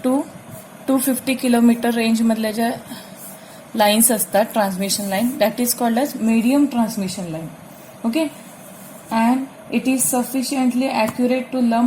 to 250 kilometer range मधल्या ज्या lines असतात transmission line that is called as medium transmission line. Okay, and it is sufficiently accurate to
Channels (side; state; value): both; identical; correlation 1.00